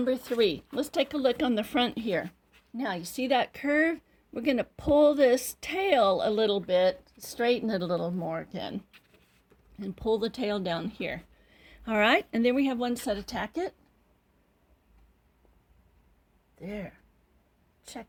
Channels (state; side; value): identical; both; correlation 1.00